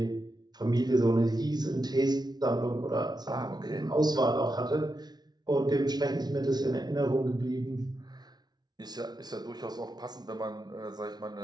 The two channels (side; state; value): left; late; 0.19 ms